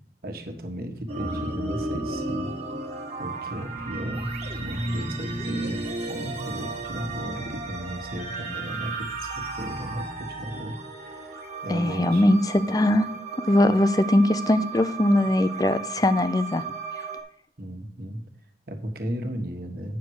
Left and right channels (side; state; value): both; normal; correlation 0.78